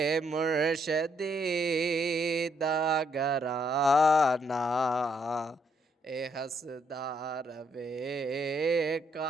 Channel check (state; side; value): normal; both; correlation 0.73